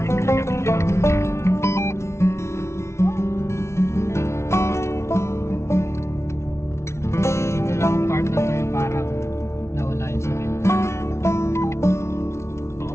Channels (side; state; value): right; late; 0.13 ms